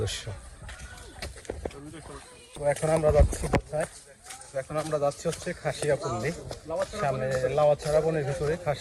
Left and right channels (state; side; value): identical; both; correlation 1.00